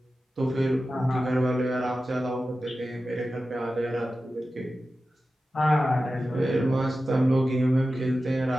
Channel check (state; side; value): normal; both; correlation 0.93